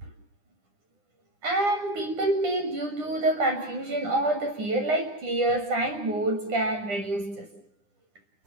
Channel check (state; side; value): late; left; 9.9 ms